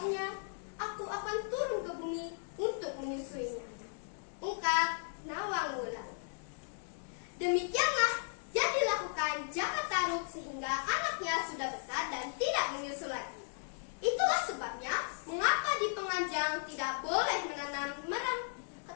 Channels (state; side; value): silent; right; digital silence